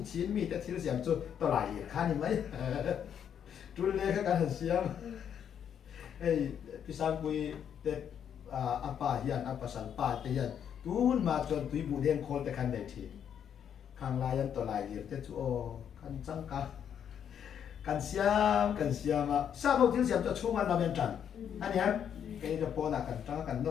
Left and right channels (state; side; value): quieter; right; 8.6 dB